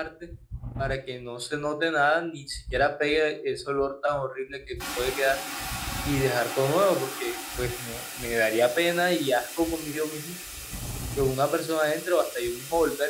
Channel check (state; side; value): identical; both; correlation 1.00